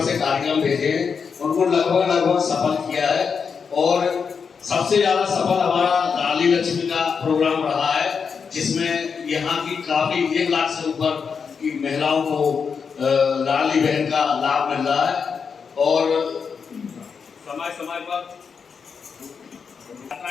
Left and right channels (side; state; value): right; quieter; 6.0 dB